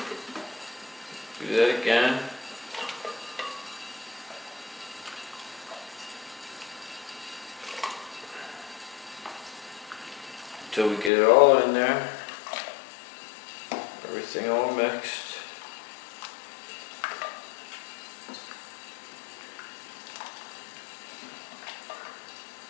Do that again. Until we get it all in there. Everything all mixed.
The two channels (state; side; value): drops out; right; at 11.1 s